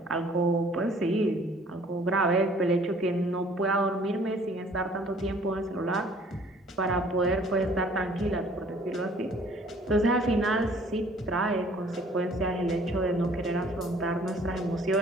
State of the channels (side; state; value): both; normal; correlation 0.56